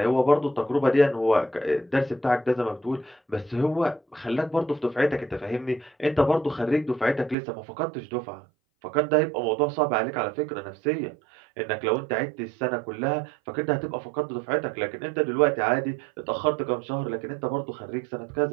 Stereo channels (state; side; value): drops out; left; at 7.4 s